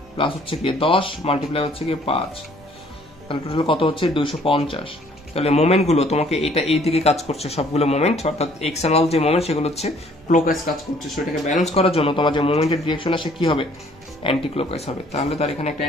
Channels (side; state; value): both; normal; correlation 0.59